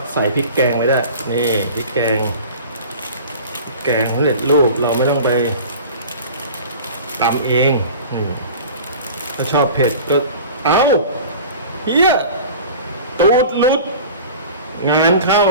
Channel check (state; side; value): inverted; both; correlation -0.39